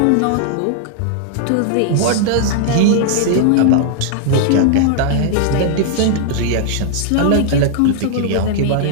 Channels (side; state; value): both; different; correlation 0.00